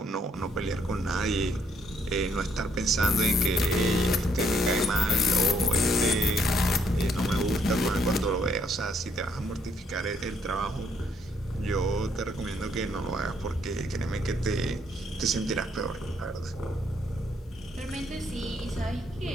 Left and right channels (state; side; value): normal; both; correlation 0.69